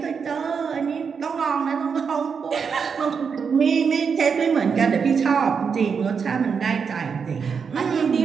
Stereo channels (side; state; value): left; quieter; 6.1 dB